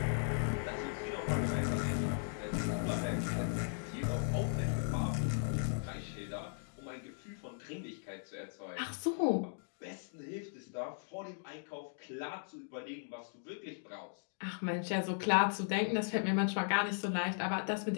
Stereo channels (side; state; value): right; silent; digital silence